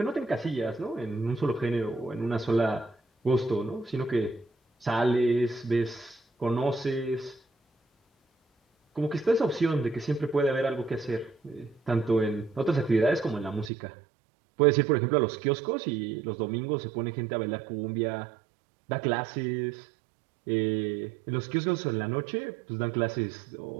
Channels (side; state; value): left; drops out; at 13.7 s